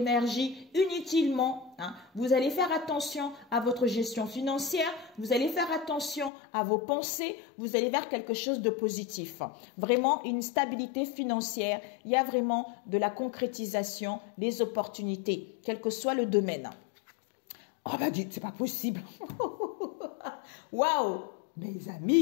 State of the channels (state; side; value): drops out; right; at 6.3 s